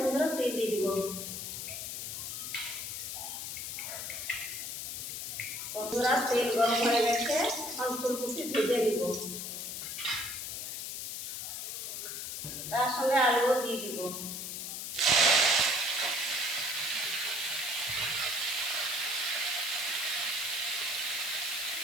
তেল দিয়ে দিব। বন্ধুরা তেল গরম হয়ে গেছে, এখন ফুলকপি ভেজে দিব। তার সঙ্গে আলুও দিয়ে দিব।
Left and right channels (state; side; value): noise; left; hiss, 5 dB below the sound